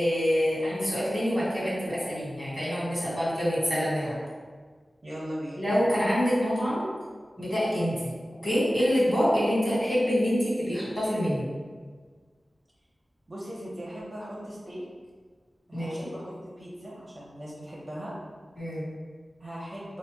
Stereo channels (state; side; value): normal; both; correlation 0.95